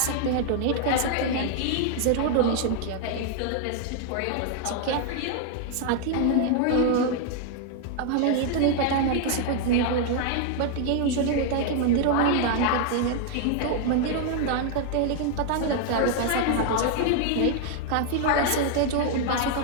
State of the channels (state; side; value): different; both; correlation 0.00